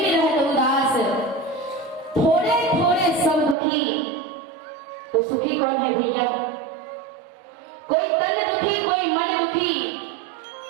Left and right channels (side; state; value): left; drops out; at 3.6 s